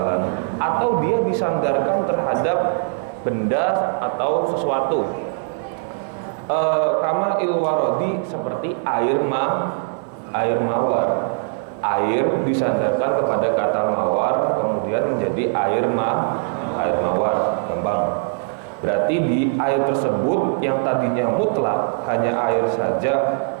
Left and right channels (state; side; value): silent; left; digital silence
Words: atau dia disandarkan terhadap benda atau sesuatu. Kama'il warodi, seperti air mawar. Air disandarkan kepada kata mawar, kemudian menjadi air mawar, gampang. Berarti di air tersebut yang tadinya mutlak hanya air saja